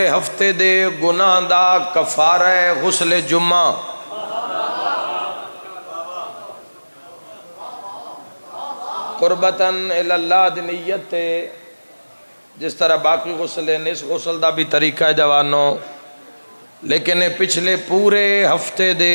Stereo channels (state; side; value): inverted; both; correlation -1.00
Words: ہفتے دے گناہ دا کفارہ غسل جمعہ قربتاً اللہ دی نیت تے جس طرح باقی غسل ہیں اس غسل دا بھی طریقہ ہے جوانوں لیکن پچھلے پورے ہفتے